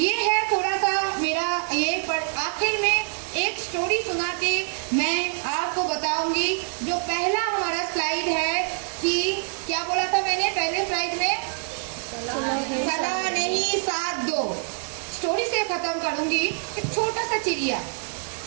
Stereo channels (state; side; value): silent; left; 62 dB below the other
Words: है थोड़ा सा मेरा ये, पर आखिर में एक स्टोरी सुना के मैं आपको बताऊंगी। जो पहला हमारा स्लाइड है कि क्या बोला था मैंने पहले स्लाइड में? सलाह नहीं साथ दो। स्टोरी से खत्म करूंगी। एक छोटा सा चिड़िया